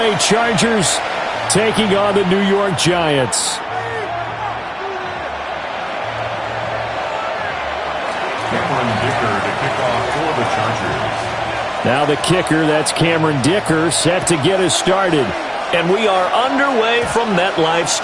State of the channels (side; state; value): both; identical; correlation 1.00